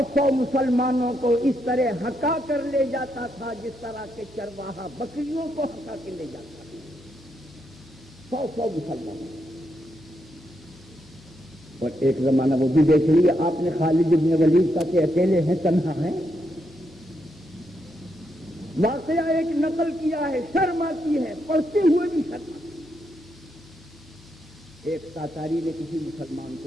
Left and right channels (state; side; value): normal; both; correlation 0.80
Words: مسلمانوں کو اس طرح ہکا کر لے جاتا تھا جس طرح کے چرواہا بکریوں کو ہکا کے لے جاتا تھا، 100 مسلمانوں۔ اور ایک زمانہ وہ بھی دیکھ لیے آپ نے خالد بن ولید کا کہ اکیلے ہیں، تنہا ہیں۔ واقعہ ایک نقل کیا ہے، شرم آتی ہے، پڑھتے ہوئے بھی شرم آتی ہے۔ ایک تاتاری نے کسی مسلمان